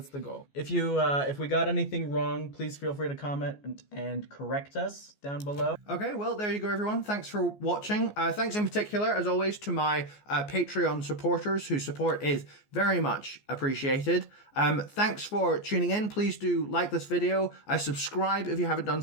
goal. If we got anything wrong, please feel free to comment and correct us down below. Okay, well, there you go, everyone. Thanks for watching. Thanks in particular, as always, to my Patreon supporters, whose support is very much appreciated. Thanks for tuning in. Please do like this video. Subscribe if you haven't done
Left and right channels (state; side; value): late; right; 14 ms